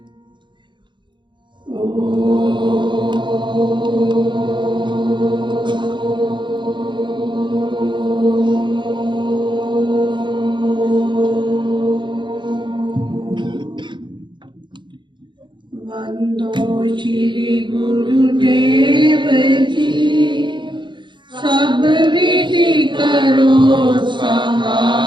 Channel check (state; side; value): late; left; 0.23 ms